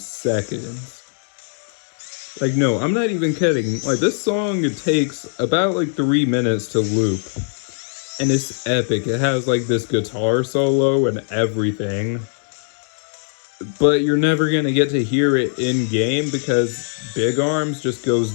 Like, no, I'm not even kidding. Like, this song, it takes about, like, 3 minutes to loop. And it's epic. It has, like, this guitar solo and everything. But you're never gonna get to hear it in-game because Big Arms just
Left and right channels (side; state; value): right; silent; 65 dB below the other